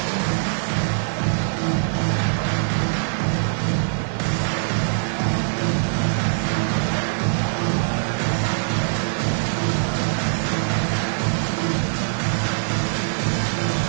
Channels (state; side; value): silent; left; digital silence